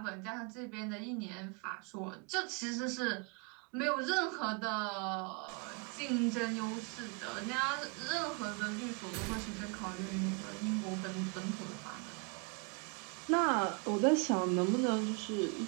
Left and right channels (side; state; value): left; quieter; 33.0 dB